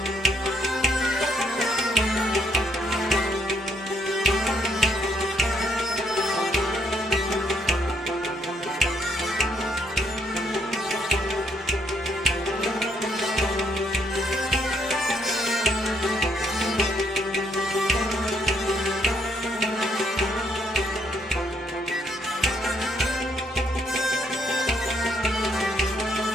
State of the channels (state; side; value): normal; both; correlation 0.72